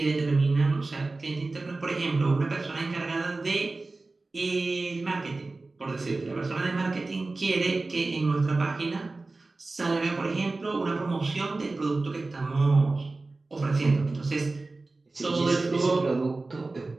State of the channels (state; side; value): quieter; left; 3.4 dB